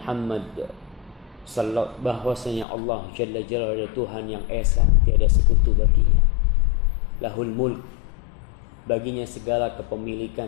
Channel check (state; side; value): drops out; right; at 2.7 s